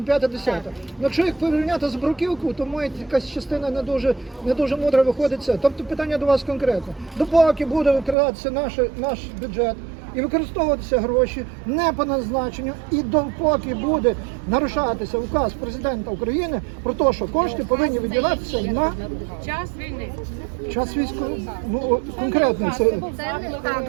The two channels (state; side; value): drops out; left; at 8.2 s